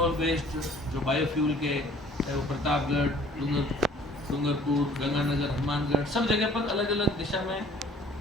बेस्ड जो बायोफ्यूल के, चाहे वो प्रतापगढ़, डूंगरपुर, गंगानगर, हनुमानगढ़, सब जगह पर अलग अलग दिशा में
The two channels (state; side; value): normal; both; correlation 0.54